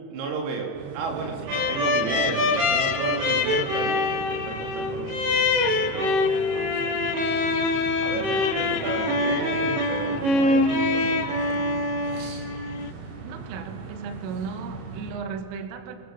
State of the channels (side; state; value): left; late; 36 ms